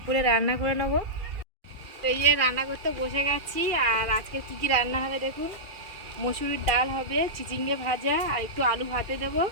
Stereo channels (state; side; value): late; left; 2.4 ms